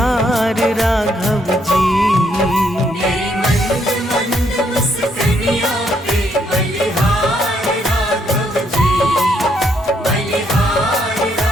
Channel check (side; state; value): both; normal; correlation 0.72